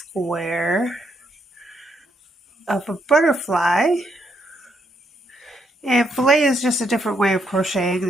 of a butterfly. And filet is just a different way of crocheting.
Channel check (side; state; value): both; normal; correlation 0.76